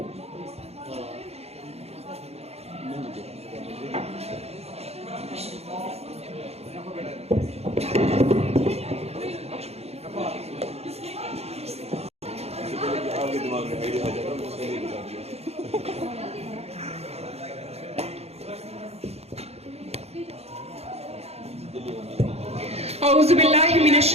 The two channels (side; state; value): left; late; 0.30 ms